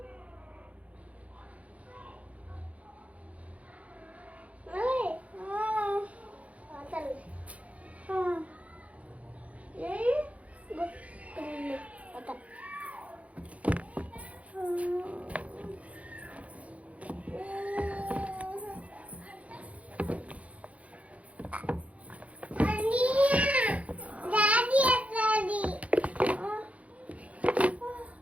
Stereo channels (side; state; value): left; late; 0.066 ms